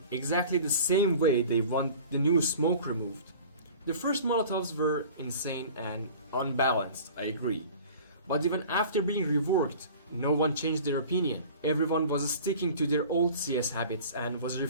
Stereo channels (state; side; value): inverted; both; correlation -0.43